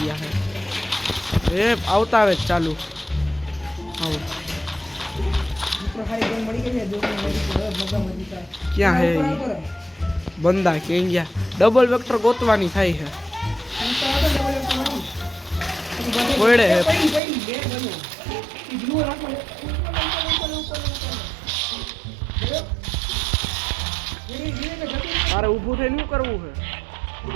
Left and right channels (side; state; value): left; drops out; at 17.2 s